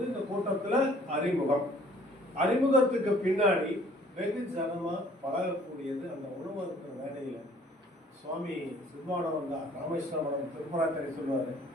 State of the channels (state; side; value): normal; both; correlation 0.56